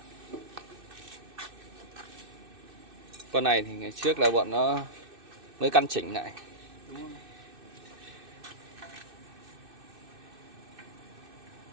Con này thì ngày trước là bọn nó mới căn chỉnh lại. Đúng không?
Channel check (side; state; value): left; late; 2.6 ms